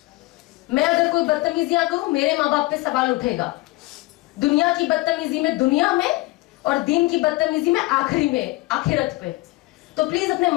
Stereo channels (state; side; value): quieter; right; 21.1 dB